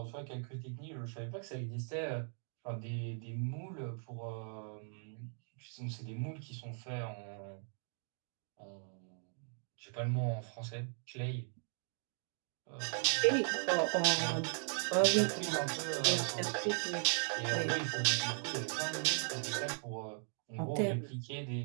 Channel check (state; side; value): silent; left; 52 dB below the other